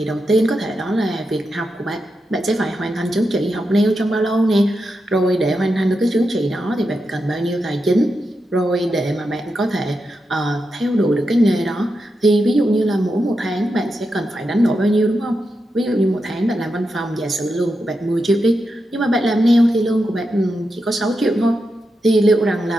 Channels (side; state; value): both; normal; correlation 0.87